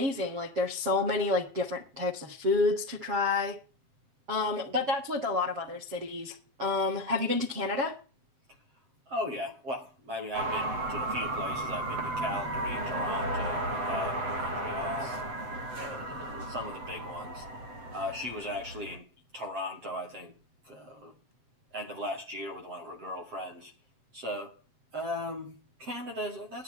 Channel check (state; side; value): late; left; 7.3 ms